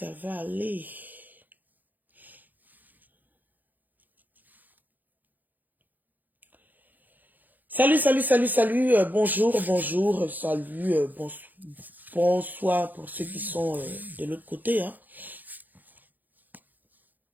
va aller. Salut, salut, salut, salut. Bonjour, bonjour, salut, bonsoir pour ceux qui sont de l'autre côté. Hein.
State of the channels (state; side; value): late; left; 0.084 ms